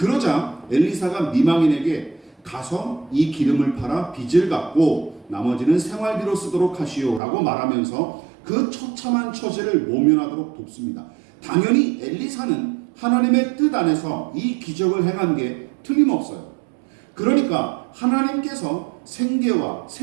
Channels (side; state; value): left; drops out; at 7.2 s